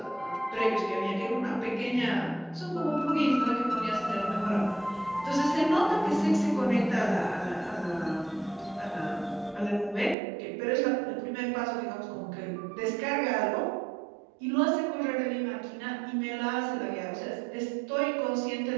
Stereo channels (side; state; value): left; drops out; at 10.2 s